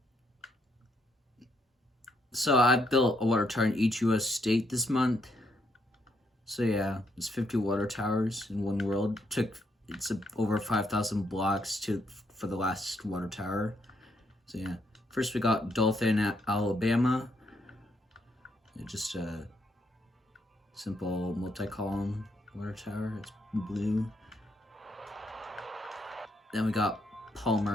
So I built a water tower in each US state this month. So yeah, it's 50 water towers in one world. It's over 5,000 blocks for the last water tower. So yeah. First we got Dothan, Alabama. Just a simple multi-column water tower. It's blue. Then we got Palmer,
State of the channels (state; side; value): normal; both; correlation 0.75